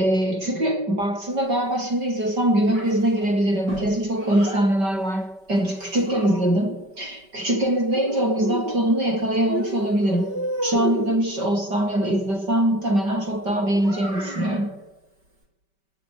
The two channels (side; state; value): left; late; 5.2 ms